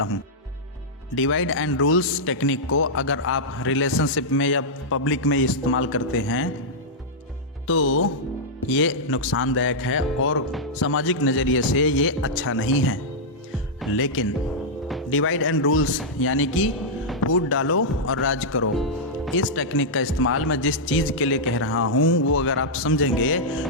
हूं। डिवाइड एंड रूल्स टेक्निक को अगर आप रिलेशनशिप में या पब्लिक में इस्तेमाल करते हैं तो ये नुकसानदायक है और सामाजिक नज़रिए से ये अच्छा नहीं है। लेकिन डिवाइड एंड रूल्स यानी कि फूट डालो और राज करो, इस टेक्निक का इस्तेमाल मैं जिस चीज़ के लिए कह रहा हूँ वो अगर आप समझेंगे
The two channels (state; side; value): normal; both; correlation -0.08